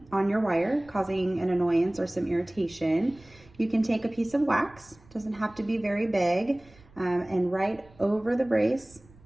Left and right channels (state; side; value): noise; right; rumble, 26 dB below the sound